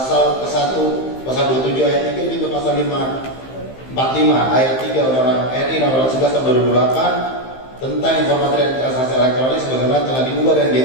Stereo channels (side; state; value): right; late; 15 ms